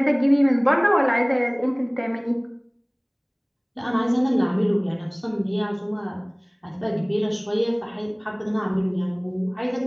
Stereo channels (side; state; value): both; identical; correlation 1.00